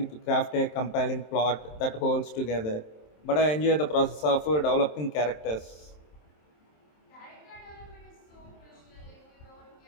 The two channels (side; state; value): right; late; 27 ms